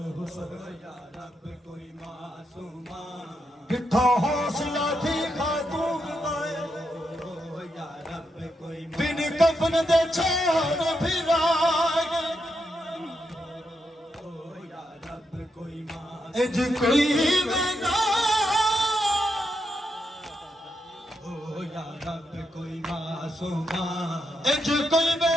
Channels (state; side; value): normal; both; correlation 0.83